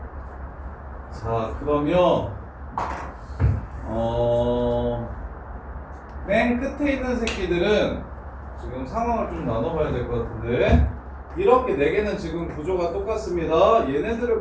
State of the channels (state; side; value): identical; both; correlation 1.00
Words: 자, 그러면 맨 끝에 있는 새끼들은 지금 상황을 좀 나눠봐야 될 것 같은데, 이렇게 4개는 지금 구조가 똑같습니다.